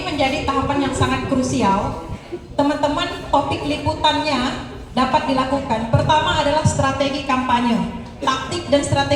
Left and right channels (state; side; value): identical; both; correlation 1.00